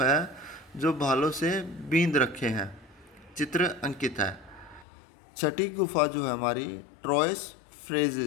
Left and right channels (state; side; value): drops out; right; at 4.9 s